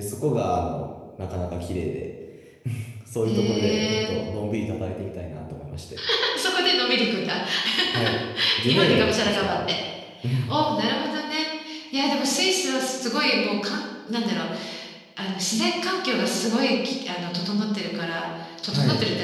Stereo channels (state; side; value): identical; both; correlation 1.00